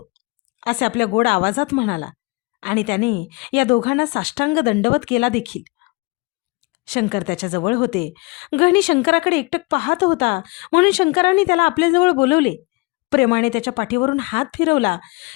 असे आपल्या गोड आवाजात म्हणाला. आणि त्याने या दोघांना साष्टांग दंडवत केला देखील. शंकर त्याच्याजवळ होते. गहणी शंकराकडे एकटक पाहत होता, म्हणून शंकराने त्याला आपल्याजवळ बोलवले. प्रेमाने त्याच्या पाठीवरून हात फिरवला.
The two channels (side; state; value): right; quieter; 27.0 dB